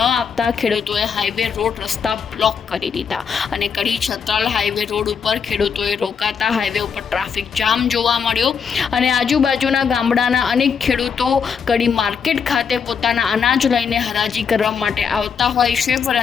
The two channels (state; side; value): quieter; right; 6.5 dB